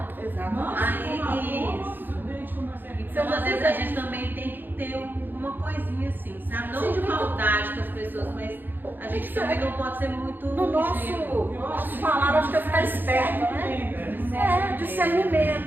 então às vezes a gente também tem que ter uma coisinha assim, sabe? Não de maldade com as pessoas, mas a gente também não pode ser muito... No nosso falar, acho que é ficar esperto, né?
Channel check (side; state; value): left; late; 0.092 ms